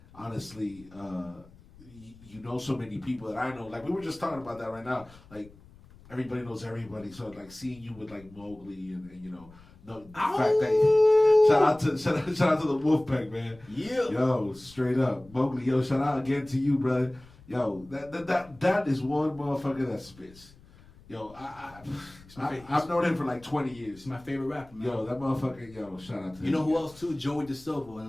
honestly, you know so many people that I know. Like we were just talking about that right now. Like everybody knows everybody, so like seeing you with like Mowgli and the fact that shout out to the Wolfpack, man. Yeah. Yo, straight up, Mowgli. Yo, shout out again to you, brother. Yo, that is one motherfucker that spits. Yo, I've known him for like 20 years. He's my favorite rapper, man. Yo, that motherfucker, shout out to him. You know who else too? Joey DeSilva,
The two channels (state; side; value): noise; left; rumble, 23 dB below the sound